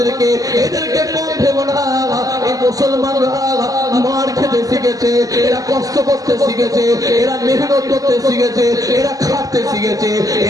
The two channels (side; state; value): left; late; 0.17 ms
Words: এদেরকে কম ভেবো না। এই মুসলমানরা মার খেতে শিখেছে, এরা কষ্ট করতে শিখেছে, এরা মেহনত করতে শিখেছে, এরা খাটতে শিখেছে,